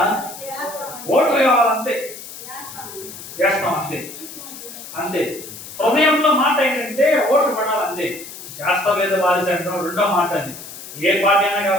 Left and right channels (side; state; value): left; noise; hiss, 13 dB below the sound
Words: ఓట్లు కావాలంతే, చేస్తాం అంతే అంతే. హృదయంలో మాట ఏంటంటే ఓట్లు పడాలంతే. చేస్తా లేదా వారి అంటాం రెండో మాట. అది ఏ పార్టీ అయినా